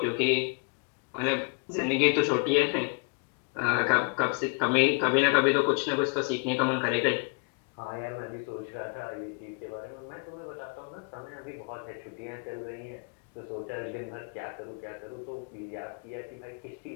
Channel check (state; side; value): quieter; right; 35.9 dB